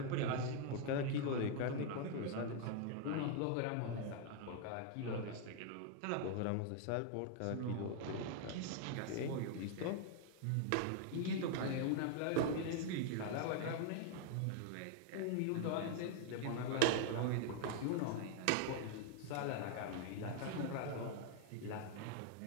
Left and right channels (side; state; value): both; different; correlation 0.00